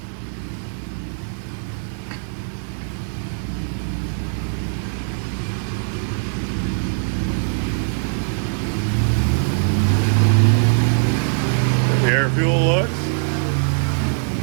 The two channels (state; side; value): silent; left; 65 dB below the other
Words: The air fuel looks.